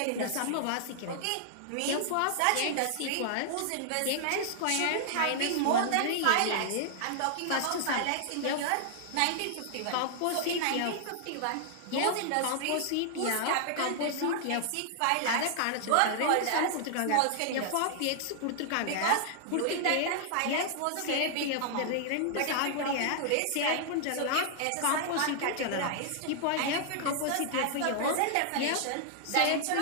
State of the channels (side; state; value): both; different; correlation -0.01